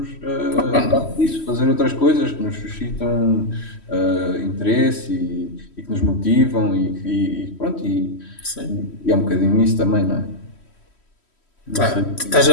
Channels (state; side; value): late; right; 3.1 ms